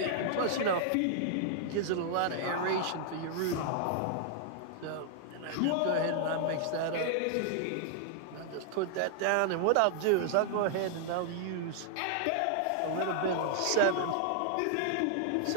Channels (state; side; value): different; both; correlation -0.01